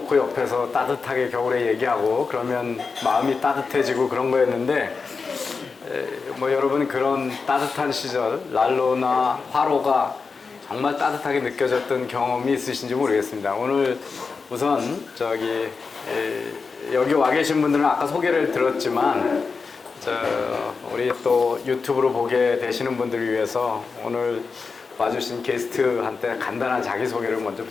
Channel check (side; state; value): right; quieter; 4.8 dB